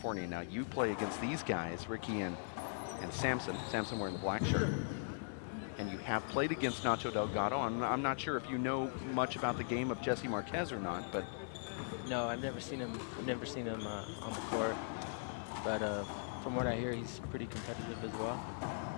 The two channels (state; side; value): silent; right; digital silence